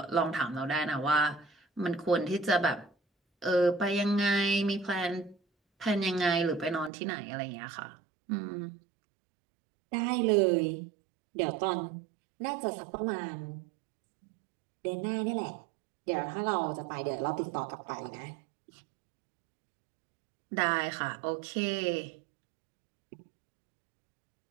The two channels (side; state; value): left; drops out; at 6.9 s